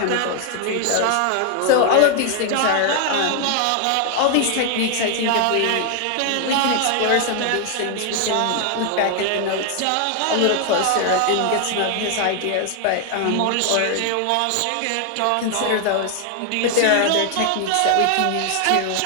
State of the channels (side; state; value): both; different; correlation 0.00